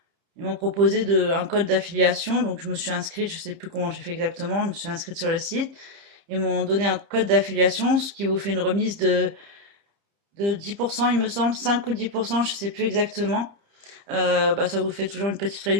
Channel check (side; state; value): left; late; 30 ms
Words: ils m'ont proposé un code d'affiliation. Donc je me suis inscrite, je sais plus comment j'ai fait exactement, je me suis inscrite sur le site. Ils m'ont donné un code d'affiliation, ce qui vous fait une remise de 10%, il me semble, 5 ou 10%, je sais plus exactement. Ça vous fait toujours une petite